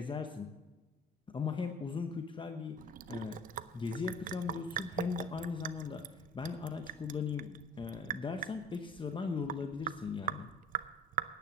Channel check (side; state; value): both; normal; correlation 0.46